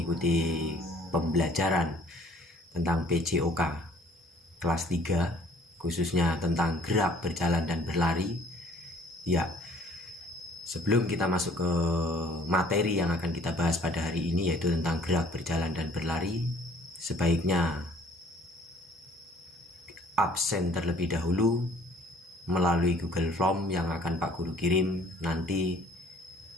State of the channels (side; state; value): both; normal; correlation 0.56